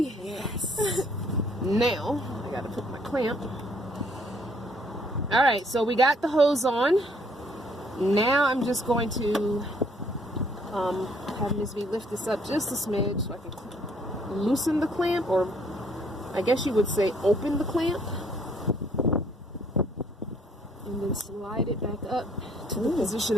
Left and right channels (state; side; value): normal; both; correlation 0.64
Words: Yes. Now, I gotta put my clamp. All right, so we got the hose on. Now I'm just going to have Ms. V lift this up just a smidge so I can loosen the clamp, or I guess you would say open the clamp, and then slide it back up to the position